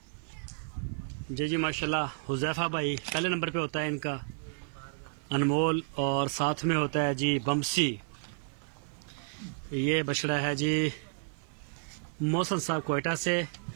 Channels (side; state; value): left; silent; 57 dB below the other